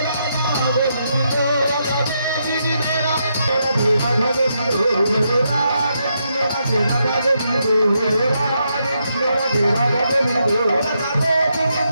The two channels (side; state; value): both; inverted; correlation -0.81